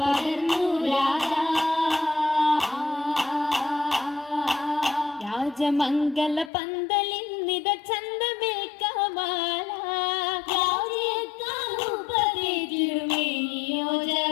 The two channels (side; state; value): right; drops out; at 6.5 s